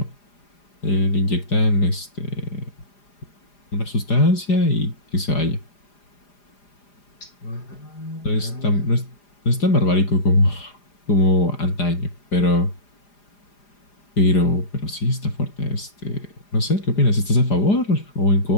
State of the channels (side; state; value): right; late; 4.9 ms